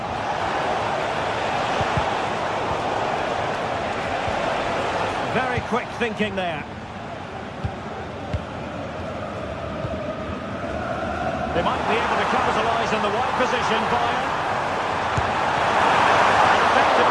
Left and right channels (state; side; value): identical; both; correlation 1.00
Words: Very quick thinking there. They might be able to capitalise in the wide position, Bayern.